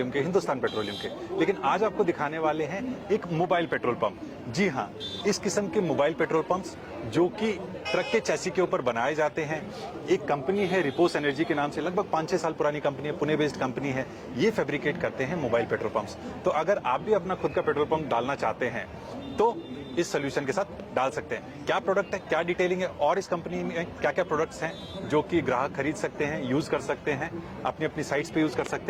के, हिंदुस्तान पेट्रोलियम के, लेकिन आज आपको दिखाने वाले हैं एक मोबाइल पेट्रोल पंप। जी हाँ, इस किस्म के मोबाइल पेट्रोल पंप्स जो कि ट्रक के चैसी के ऊपर बनाए जाते हैं। एक कंपनी है रिपोस एनर्जी के नाम से, लगभग 5-6 साल पुरानी कंपनी है, पुणे बेस्ड कंपनी है। ये फैब्रिकेट करते हैं मोबाइल पेट्रोल पंप्स। तो अगर आप भी अपना खुद का पेट्रोल पंप डालना चाहते हैं तो इस सोल्यूशन के साथ डाल सकते हैं। क्या प्रोडक्ट है, क्या डिटेलिंग है और इस कंपनी में क्या क्या प्रोडक्ट्स हैं जो कि ग्राहक खरीद सकते हैं, यूज कर सकते हैं, अपनी अपनी साइट्स पे यूज कर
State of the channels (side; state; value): both; identical; correlation 1.00